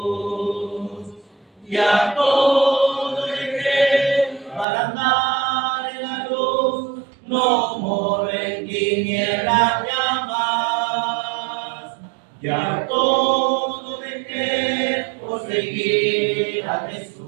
y a todo dejé para andar no moro en tinieblas llamas. Ya todo dejé por seguir a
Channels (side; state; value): left; drops out; at 4.7 s